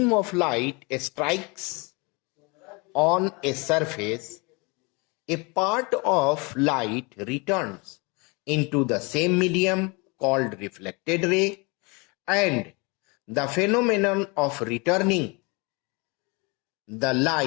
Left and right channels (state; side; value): quieter; right; 28.8 dB